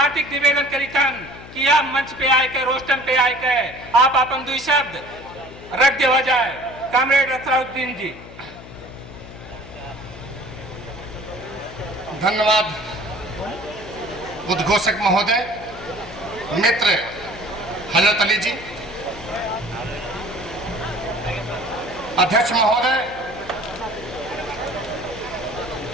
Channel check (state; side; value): noise; left; hum, 16 dB below the sound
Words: निवेदन करीतन कि आप मंच पे आए के रोस्टम पे आए के आप अपन दुई शब्द रख देवा जाए। कामरेड असरारुद्दीन जी। धन्यवाद उद्घोषक महोदय, मित्र हजरत अली जी, अध्यक्ष महोदय,